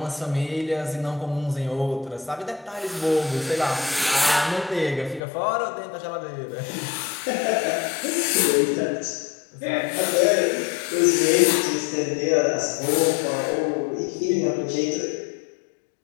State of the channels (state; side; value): drops out; right; at 5.2 s